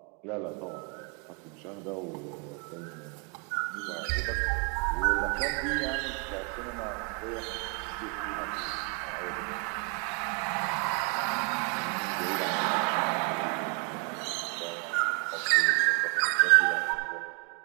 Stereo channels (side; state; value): left; quieter; 35.5 dB